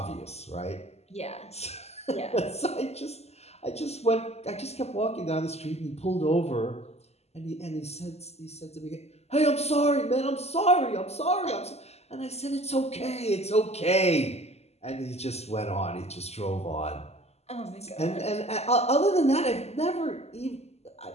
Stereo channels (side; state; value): right; late; 0.30 ms